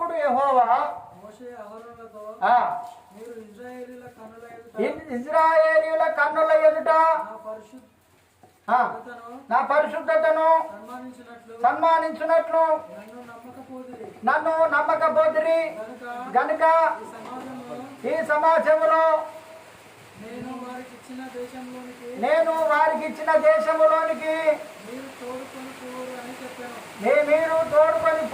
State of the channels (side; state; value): both; identical; correlation 1.00